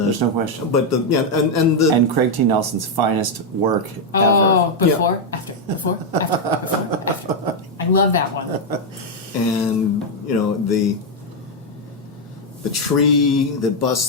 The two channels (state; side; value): normal; both; correlation 0.01